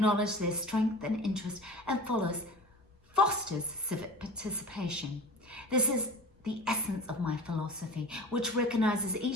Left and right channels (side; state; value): both; normal; correlation 0.36